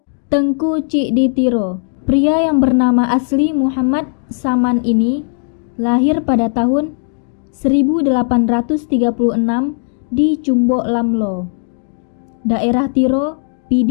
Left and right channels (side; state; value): right; silent; 64 dB below the other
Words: Tengku Cik di Tiro. Pria yang bernama asli Muhammad Saman ini lahir pada tahun 1836 di Cumbok Lamlo, daerah Tiro,